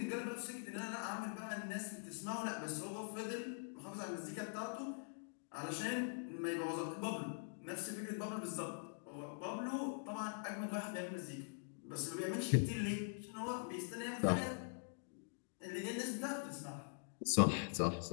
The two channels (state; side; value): silent; right; digital silence